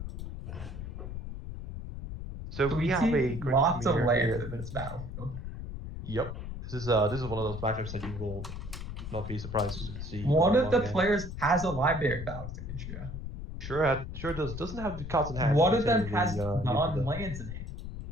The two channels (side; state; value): left; noise; rumble, 8 dB below the sound